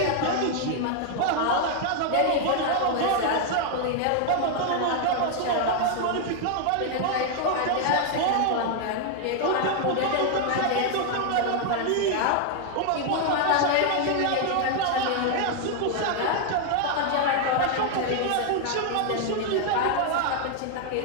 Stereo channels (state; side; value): different; both; correlation 0.00